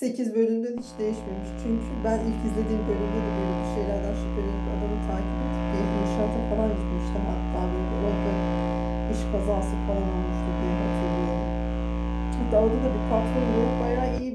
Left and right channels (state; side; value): identical; both; correlation 1.00